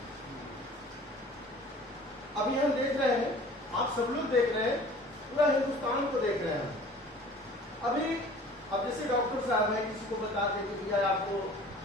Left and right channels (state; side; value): normal; both; correlation 0.46